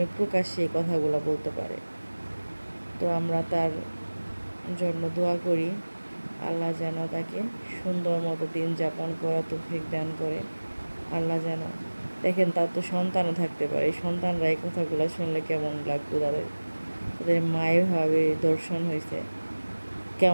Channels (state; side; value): inverted; both; correlation -1.00